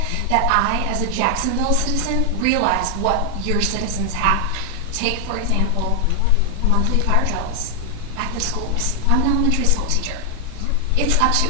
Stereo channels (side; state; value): both; different; correlation 0.00